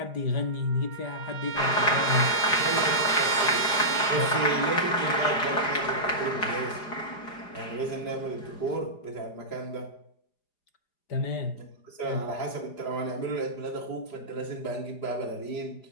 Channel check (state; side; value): late; right; 4.9 ms